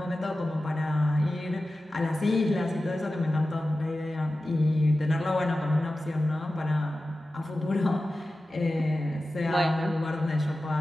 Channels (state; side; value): normal; both; correlation 0.94